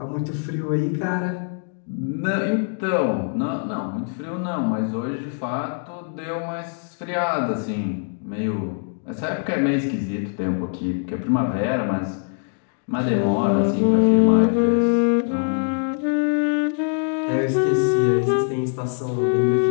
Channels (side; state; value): right; silent; 58 dB below the other